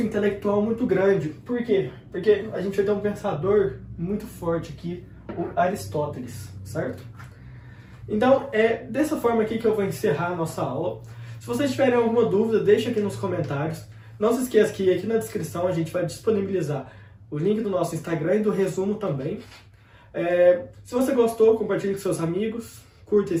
intelectual muito grande. Por quê? Porque a gente vai ter um pensador muito forte aqui, o Aristóteles, certo? Então, é dessa forma aqui que eu vou encerrar a nossa aula. Se vocês tiverem alguma dúvida, deixa aqui nos comentários. Não se esqueça que aqui na descrição a gente vai disponibilizar o link do nosso Instagram e do resumo também. Se você gostou, compartilhe com seus amigos, curta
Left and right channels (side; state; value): both; identical; correlation 1.00